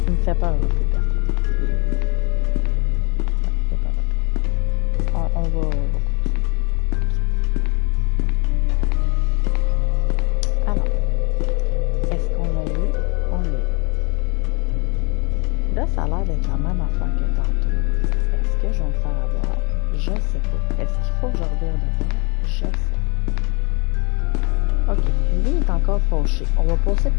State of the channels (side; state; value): right; quieter; 30.5 dB